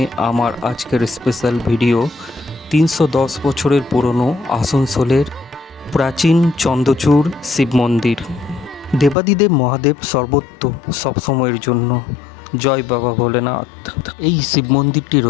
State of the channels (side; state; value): right; drops out; at 9.2 s